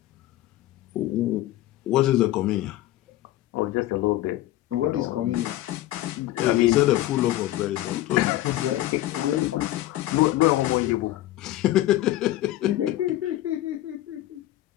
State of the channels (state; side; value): quieter; right; 15.1 dB